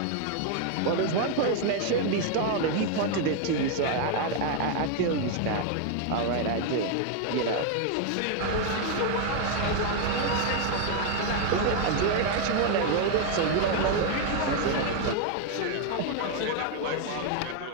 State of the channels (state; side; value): different; both; correlation 0.01